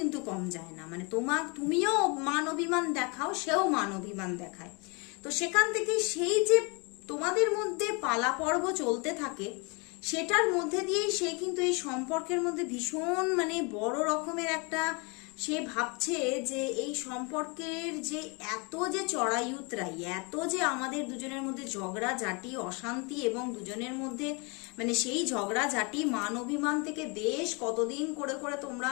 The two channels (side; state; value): right; quieter; 30.7 dB